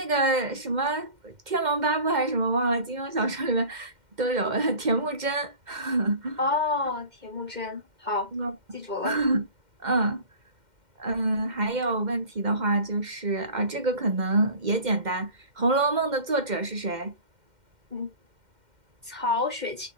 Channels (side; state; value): left; late; 2.1 ms